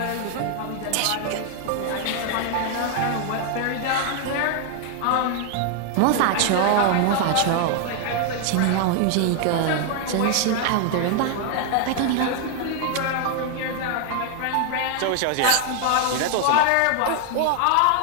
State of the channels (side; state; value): both; different; correlation 0.00